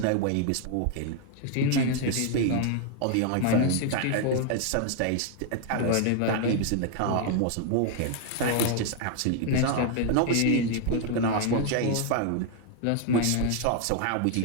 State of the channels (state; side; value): different; both; correlation 0.00